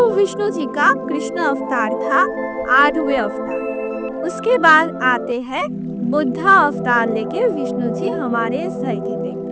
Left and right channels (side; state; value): both; identical; correlation 1.00